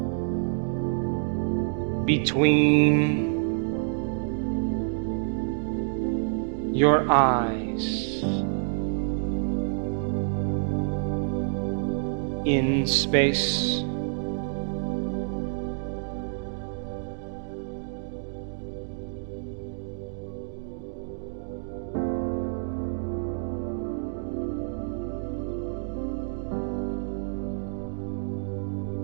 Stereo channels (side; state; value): left; silent; digital silence